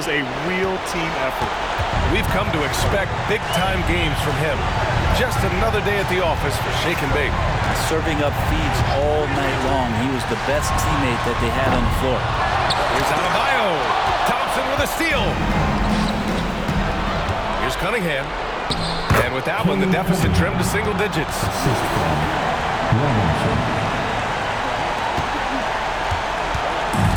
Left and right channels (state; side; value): identical; both; correlation 1.00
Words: a real team effort. We've come to expect big-time games from him. Just another day at the office for Shake and Bake. Serving up feeds all night long. He was the best teammate that they had on the floor. Here's Adebayo. Thompson with a steal. Here's Cunningham. And with that one, the deficit trimmed to single digits.